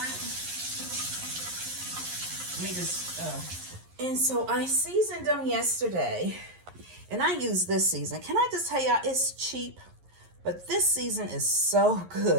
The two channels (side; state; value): left; late; 11 ms